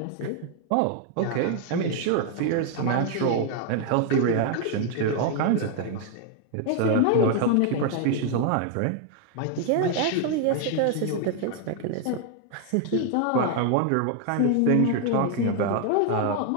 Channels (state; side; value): different; both; correlation 0.00